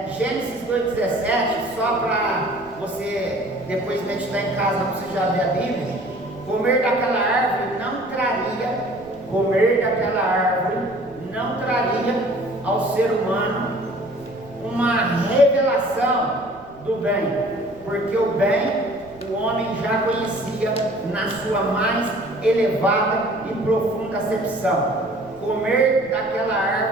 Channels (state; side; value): noise; right; rumble, 24 dB below the sound